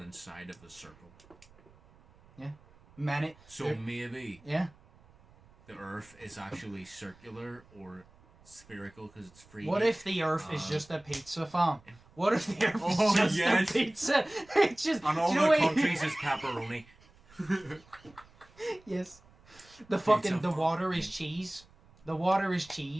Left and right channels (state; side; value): noise; right; rumble, 27 dB below the sound